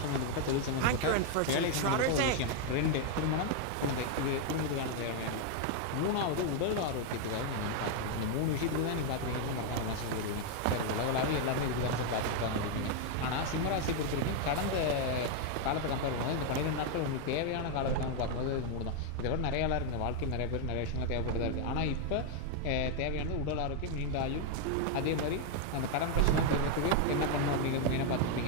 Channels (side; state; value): both; different; correlation 0.00